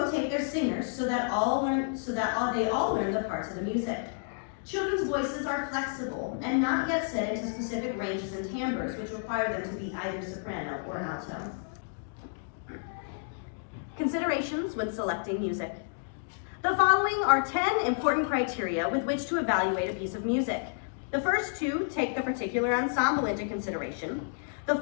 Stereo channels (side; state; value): right; silent; digital silence